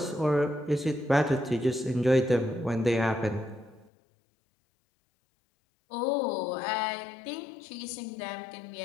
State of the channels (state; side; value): drops out; right; at 3.9 s